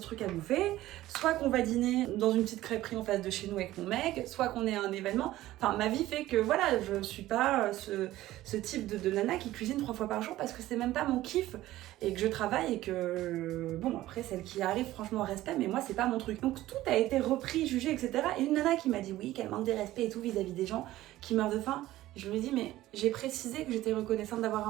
à bouffer, soit qu'on va dîner dans une petite crêperie en face de chez nous avec mon mec, soit qu'on est à un événement. Enfin, ma vie fait que voilà, je suis pas ce type de nana qui cuisine 3 fois par jour parce que c'est même pas mon kiff et que je travaille et que bon, après celle qui arrive, franchement respect, mais moi c'est pas mon truc. Donc tout a été repris, jugé, etc. Et une nana qui m'a dit oui, qu'elle manque de respect et tout vis-à-vis des gens qui meurent de faim. Je lui ai dit, mais j'ai précisé que j'étais reconnaissante d'avoir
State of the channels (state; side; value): quieter; left; 15.6 dB